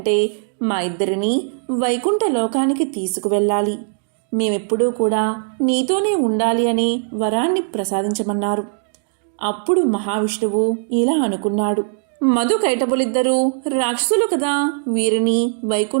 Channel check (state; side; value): silent; left; digital silence